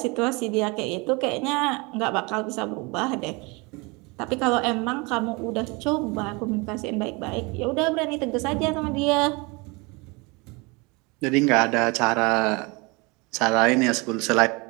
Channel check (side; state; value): left; quieter; 27.5 dB